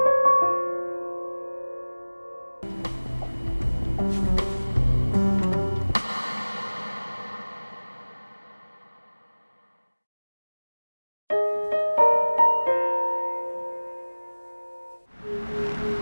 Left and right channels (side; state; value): both; inverted; correlation -1.00